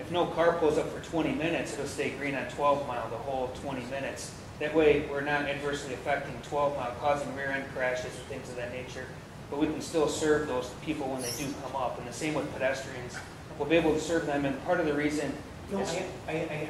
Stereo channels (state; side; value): identical; both; correlation 1.00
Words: no car pulls up for 20 minutes, it'll stay green on 12 Mile the whole 20 minutes. That way we're not adversely affecting 12 Mile, causing rear end crashes and things of that nature. But we can still serve those people when they do come up. And the same with pedestrians. We'll be able to serve them, and part of the reason No, I